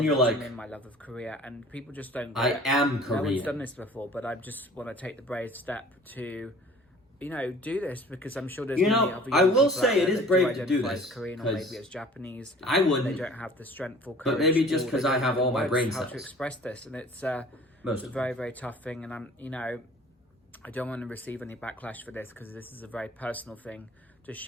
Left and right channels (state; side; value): normal; both; correlation 0.48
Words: you're like, my love of Korea, and people just don't get I it. am No one's Korean. done this before, but I just want to take the brave step to, you know, do this, because I'm sure there's You many know, other I young will people say out it there is that brave to do identify this, as Korean or 'cause maybe as Japanese. I wouldn't. They don't have the strength or But courage. maybe just or 'cause they I don't have all my words brain how to cells. express this, and it's Most it's a of very, very tough thing, and I'm, you know, I don't want to receive any backlash for this, because this is a very personal thing to